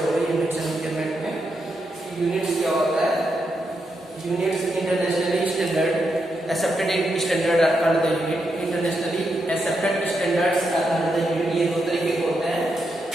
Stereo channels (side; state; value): both; normal; correlation 0.83